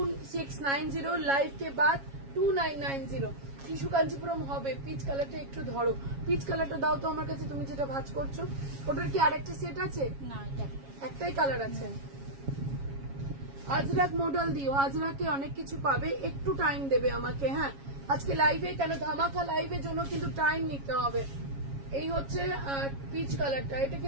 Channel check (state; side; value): late; left; 7.3 ms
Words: live के बाद 2990। টিস্যু কাঞ্জিপুরম হবে। পিচ কালারটা একটু ধরো, পিচ কালারটা দাও তো আমার কাছে, তুমি যেটা ভাঁজ করছো। ওটার কি আরেকটা সেট আছে? না এটা একটাই কালার আছে। আজরাক মডেল দিও, আজরাকে অনেক কিছু পাবে, একটু টাইম দেবে আমাকে। হ্যাঁ আজকে লাইভে কেন ধামাকা লাইভের জন্য কিন্তু টাইম নিতে হবে। এই হচ্ছে পিচ কালারটা, এটা